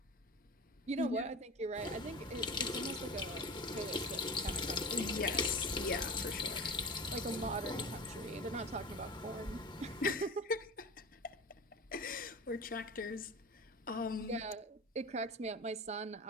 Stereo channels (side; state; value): both; normal; correlation 0.32